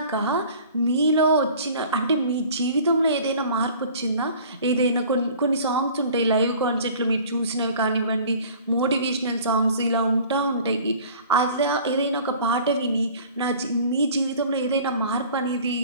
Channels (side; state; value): both; inverted; correlation -0.47